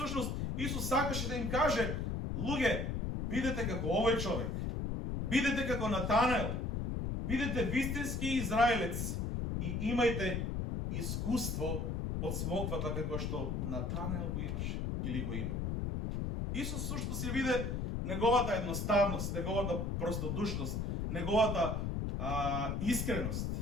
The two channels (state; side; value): noise; left; rumble, 1 dB below the sound